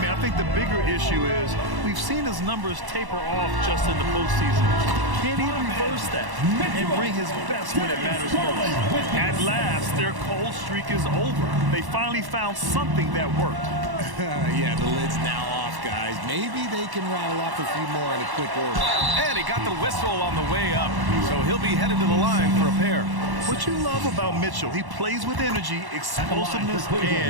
I think the bigger issue is we've seen his numbers taper off just in the postseason. Can he reverse that and bring his best when it matters most? At last, their cold streak is over. They finally found something that worked. Yeah, the lid's now off, guys. Maybe they can rattle off a few more in a quick order. And he got the whistle on the way up, so he'll be headed to the line for a pair. What you love about Mitchell, he plays with energy, explosiveness,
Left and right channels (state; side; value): late; left; 1.1 ms